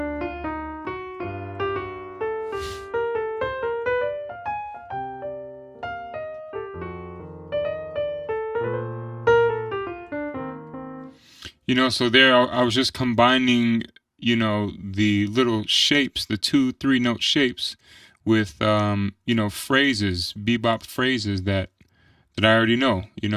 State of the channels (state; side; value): identical; both; correlation 1.00